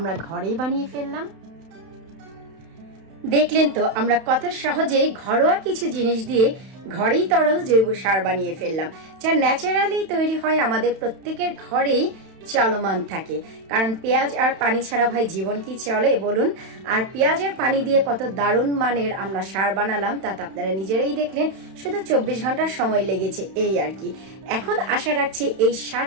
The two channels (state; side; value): late; left; 31 ms